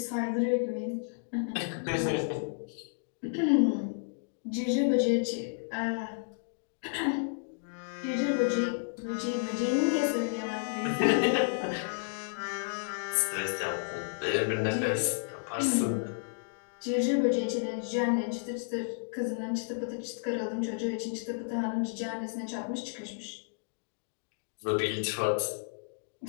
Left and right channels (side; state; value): right; silent; digital silence